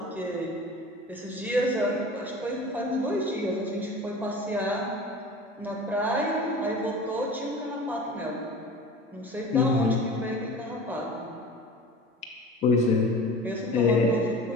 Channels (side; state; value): both; normal; correlation 0.38